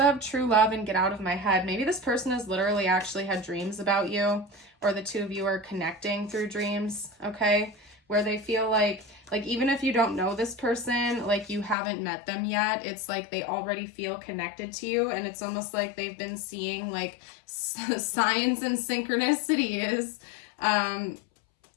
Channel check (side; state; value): right; drops out; at 11.8 s